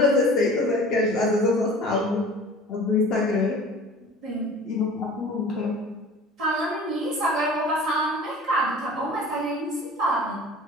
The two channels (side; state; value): both; normal; correlation 0.43